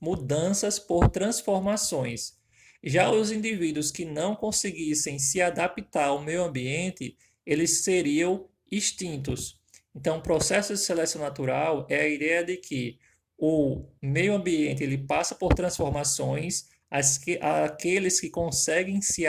por transformações. Já os indivíduos que não conseguissem se adaptar ao meio ambiente, eles seriam extintos. Então, o processo de seleção natural é a ideia de que o meio ambiente ele passa por transformações, aqueles que conseguem se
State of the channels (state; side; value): identical; both; correlation 1.00